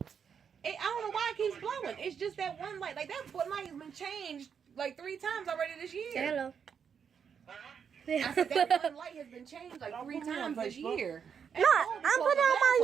I don't know why it keeps glowing. It's just that one light. Like, that light has been changed like 3 times already this year. Say hello. I said that one light has been changed like 3 times this year. No, I'm putting out my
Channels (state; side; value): quieter; left; 7.1 dB